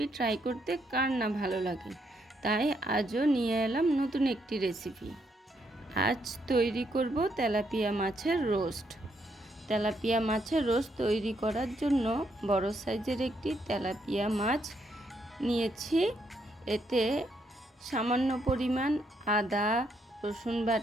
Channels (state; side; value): normal; both; correlation 0.75